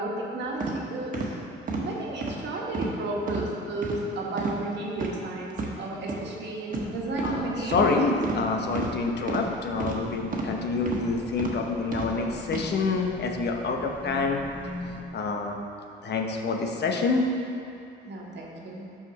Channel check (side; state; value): both; normal; correlation 0.34